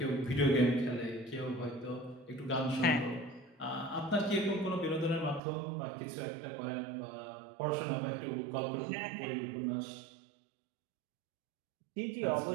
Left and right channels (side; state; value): left; drops out; at 5.4 s